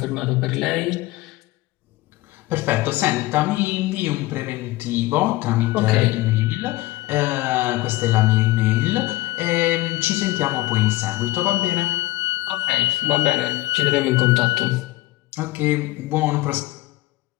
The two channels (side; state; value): right; quieter; 18.1 dB